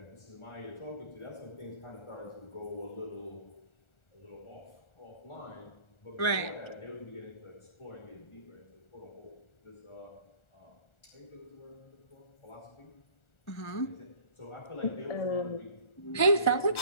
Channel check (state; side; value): late; right; 1.4 ms